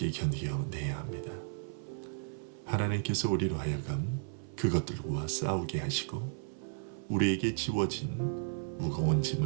견뎌내야 합니다. 하나님께서 우리로 하여금 그것들과 싸우게 하시고 우리에게 지워진 무거운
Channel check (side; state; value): left; silent; 55 dB below the other